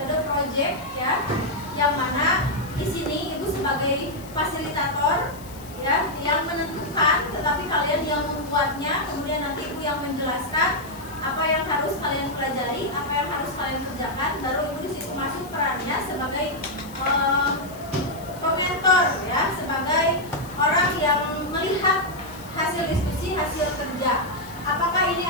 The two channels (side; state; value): left; noise; hiss, 20 dB below the sound